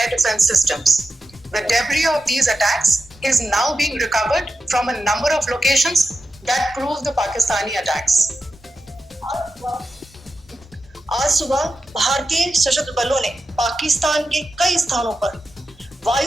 defense systems. The debris of these attacks is now being recovered from a number of locations that prove the Pakistani attacks. आज सुबह भारतीय सशस्त्र बलों ने पाकिस्तान के कई स्थानों पर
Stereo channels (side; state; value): both; normal; correlation 0.90